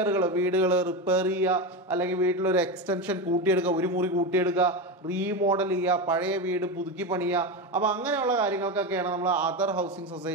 വീടുകൾ റിപ്പയർ ചെയ്യുക, അല്ലെങ്കിൽ വീട്ടിലൊരു എക്സ്റ്റൻഷൻ കൂട്ടിയെടുക്കുക, ഒരു മുറി കൂട്ടിയെടുക്കുക, റീമോഡൽ ചെയ്യുക, പഴയ വീട് പുതുക്കി പണിയുക. അപ്പോൾ അങ്ങനെയുള്ള കാര്യങ്ങൾക്കൊക്കെയാണ് നമ്മൾ അതർ ഹൗസിംഗ്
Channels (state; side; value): normal; both; correlation 0.17